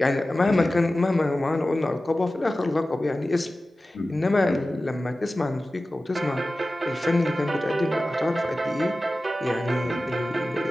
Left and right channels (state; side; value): normal; both; correlation 0.95